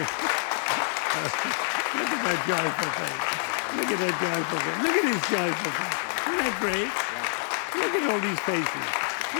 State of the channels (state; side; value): silent; right; 60 dB below the other